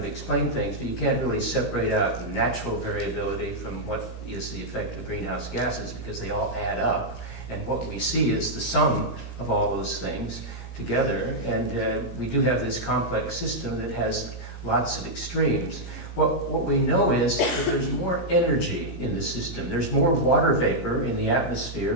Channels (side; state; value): right; late; 17 ms